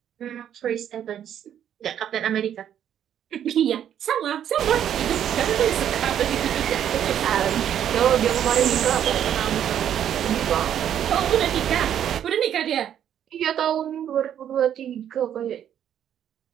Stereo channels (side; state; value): left; quieter; 9.9 dB